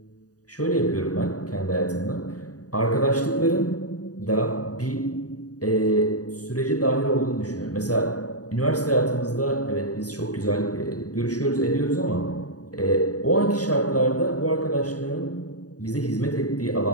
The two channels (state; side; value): late; right; 0.68 ms